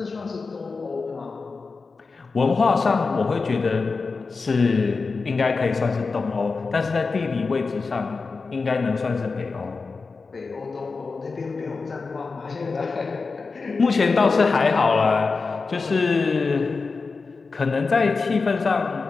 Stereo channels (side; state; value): right; quieter; 4.3 dB